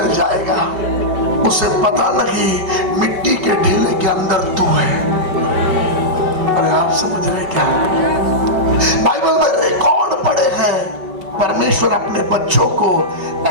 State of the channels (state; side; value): late; left; 5.1 ms